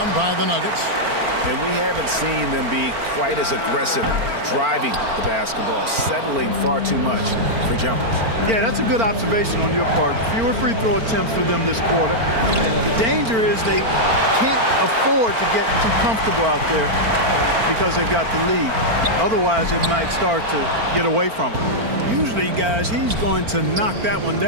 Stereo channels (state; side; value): late; left; 4.4 ms